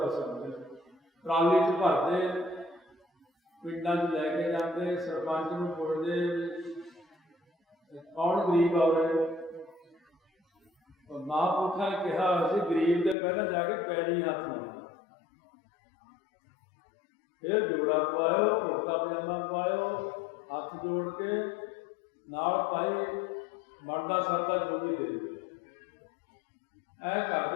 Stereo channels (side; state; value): right; drops out; at 13.2 s